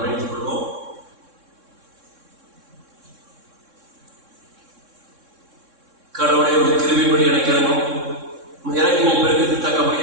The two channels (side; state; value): left; late; 3.6 ms